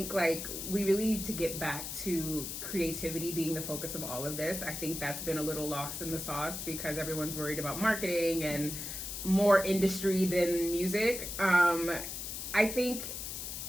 like we really need to get back to creativity being the focus of all of this. I think that's been a little lost in the sauce because everyone's worried about marketing and more industry than music. I think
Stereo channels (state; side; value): noise; left; hiss, 6 dB below the sound